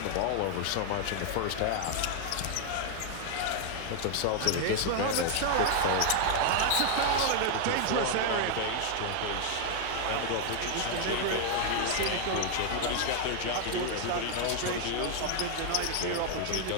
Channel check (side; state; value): both; different; correlation 0.00